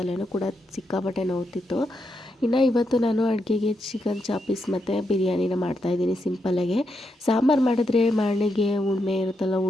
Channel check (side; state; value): both; normal; correlation 0.82